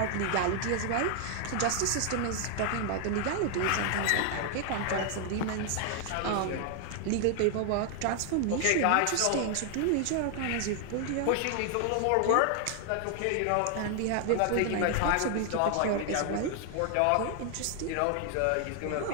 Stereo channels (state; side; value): different; both; correlation 0.00